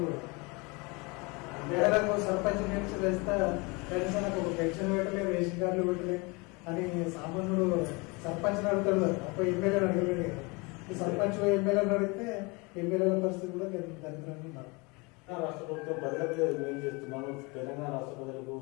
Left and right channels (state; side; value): quieter; right; 27.8 dB